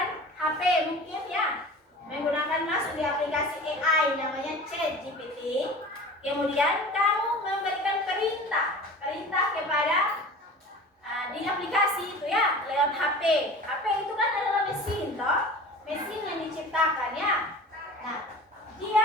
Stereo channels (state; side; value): normal; both; correlation 0.39